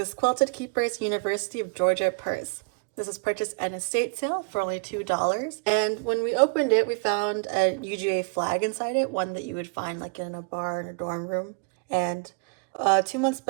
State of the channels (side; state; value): left; quieter; 34.8 dB